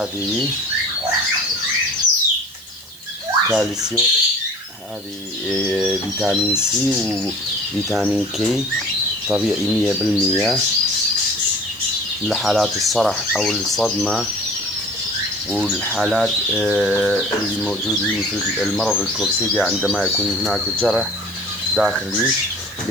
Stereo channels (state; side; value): noise; right; hiss, 21 dB below the sound